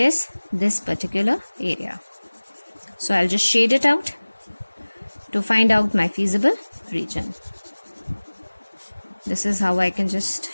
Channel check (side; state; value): both; inverted; correlation -1.00